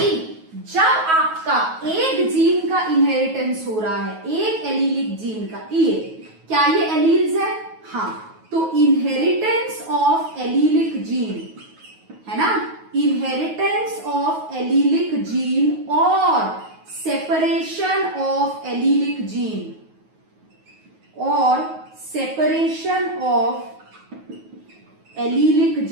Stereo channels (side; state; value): left; late; 9.3 ms